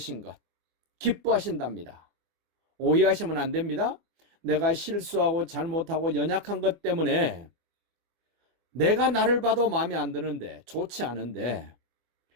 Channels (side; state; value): left; late; 24 ms